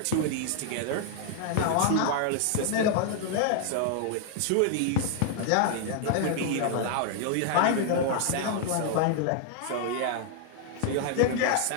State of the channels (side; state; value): both; different; correlation 0.00